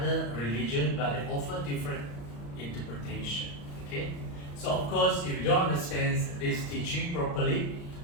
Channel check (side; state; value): right; late; 35 ms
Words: religions, but they offer different interpretation. Okay, so of course, if you don't understand this teaching properly,